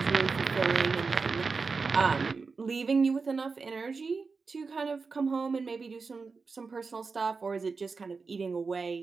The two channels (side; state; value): left; quieter; 4.6 dB